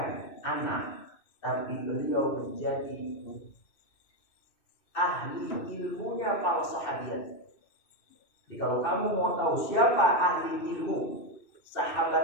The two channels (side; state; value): right; late; 2.6 ms